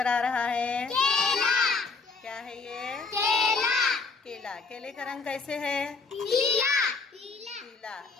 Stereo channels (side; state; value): right; quieter; 4.5 dB